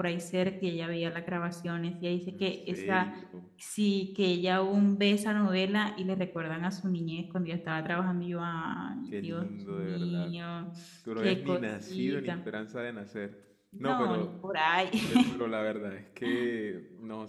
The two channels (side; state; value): both; identical; correlation 1.00